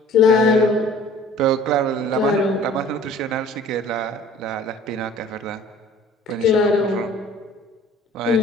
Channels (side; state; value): both; normal; correlation 0.49